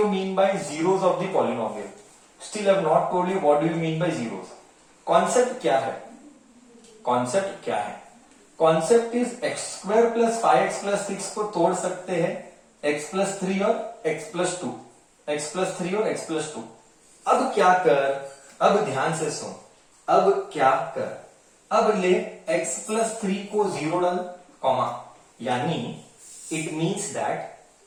mean by zeros of the polynomial. Still I have not told you what do you mean by zeros. Concept क्या है? Concept क्या है? Concept is x square plus 5x plus 6 को तोड़ सकते हैं x plus 3 और x plus 2, x plus 3 और x प्लस 2। अब क्या कर, अब ध्यान से सुन, अब क्या कर, अब ले x प्लस 3 को 0 डाल, कॉमा, यानी it means that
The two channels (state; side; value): identical; both; correlation 1.00